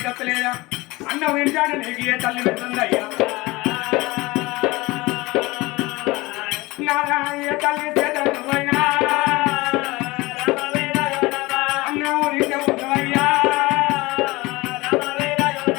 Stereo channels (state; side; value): quieter; right; 21.7 dB